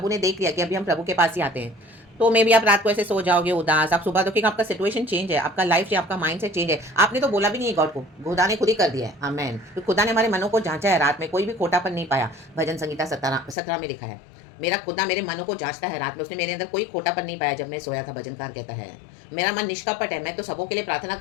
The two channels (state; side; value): drops out; right; at 13.6 s